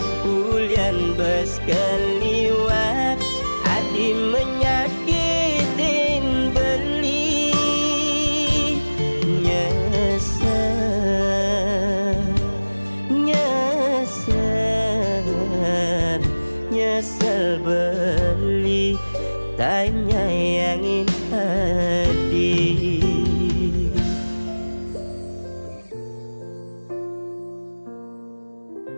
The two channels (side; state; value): both; inverted; correlation -1.00